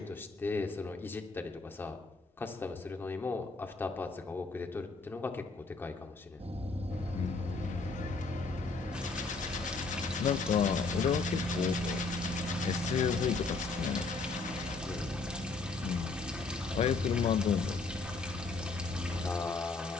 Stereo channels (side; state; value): right; quieter; 4.0 dB